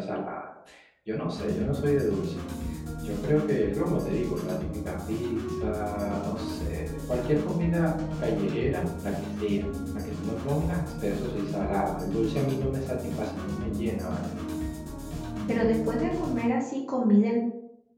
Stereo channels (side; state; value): both; identical; correlation 1.00